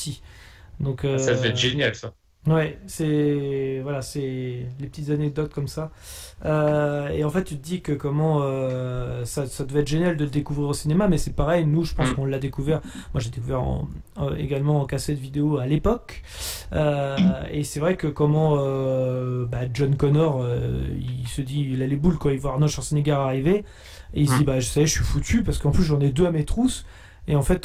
Donc, ça devait être génial, ça. Ouais, c'est les petites anecdotes comme ça. Et en fait, tu te dis que ça devait être génial de le découvrir au cinéma, mais c'est pareil. Nous, je pense qu'on l'a découvert. Moi, j'ai découvert également en cassette vidéo à l'époque. Et c'est vrai que John Connor, il se dit, il a les boules quand il voit Arnold Schwarzenegger arriver, et il se dit, je sais, je suis foutu parce qu'en plus j'en ai deux à mes trousses. Et en fait,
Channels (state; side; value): identical; both; correlation 1.00